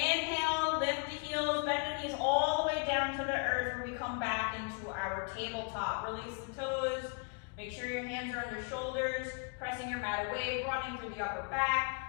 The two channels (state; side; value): quieter; right; 37.3 dB